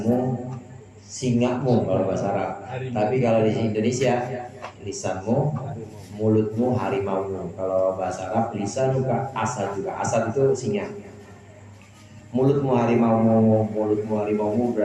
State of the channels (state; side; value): identical; both; correlation 1.00